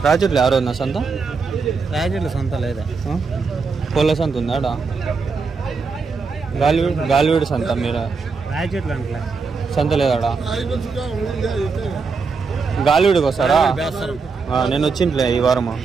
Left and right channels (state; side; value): quieter; left; 4.8 dB